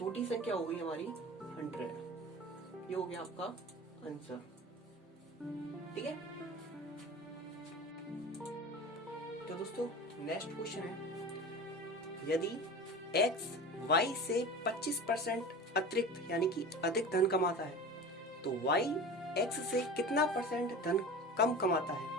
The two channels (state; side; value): normal; both; correlation 0.34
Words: संख्या हो गई हमारी 100। ये हो गया आपका आंसर, ठीक है। तो दोस्तों नेक्स्ट क्वेश्चन है, यदि x y से 25% अतिरिक्त यानी कि अधिक धन कमाता है तो y x से कितना परसेंट धन कम कमाता है।